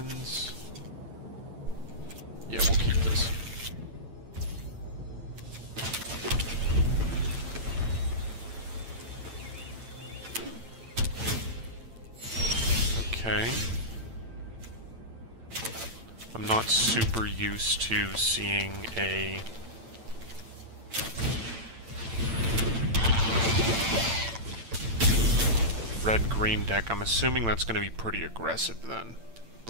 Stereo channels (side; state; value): left; late; 8.9 ms